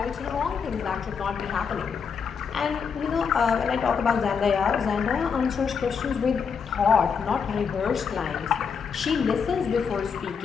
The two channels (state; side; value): quieter; right; 6.2 dB